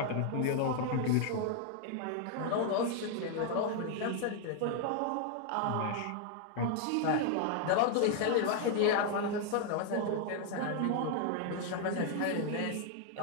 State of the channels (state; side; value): different; both; correlation 0.00